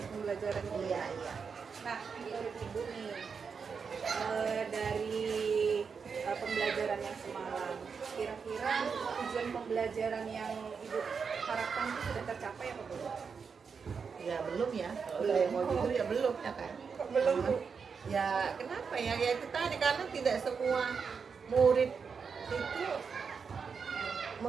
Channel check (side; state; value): left; quieter; 5.8 dB